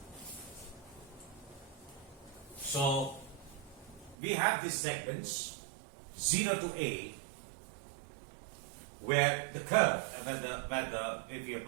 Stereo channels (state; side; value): drops out; left; at 4.2 s